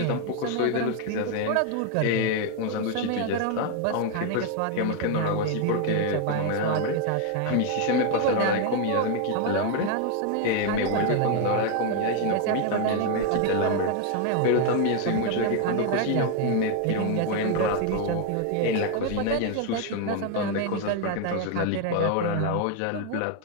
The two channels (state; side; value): different; both; correlation 0.01